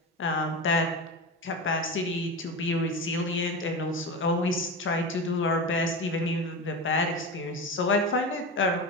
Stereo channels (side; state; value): both; normal; correlation 0.24